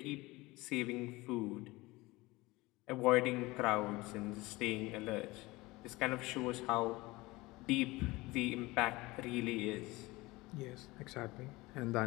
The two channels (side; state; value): right; quieter; 21.2 dB